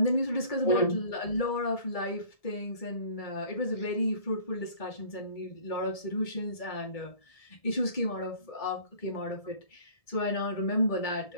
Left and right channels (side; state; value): right; late; 1.7 ms